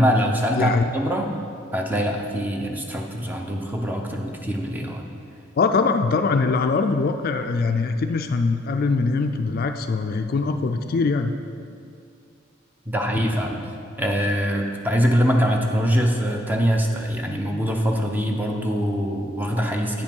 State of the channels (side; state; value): both; normal; correlation 0.68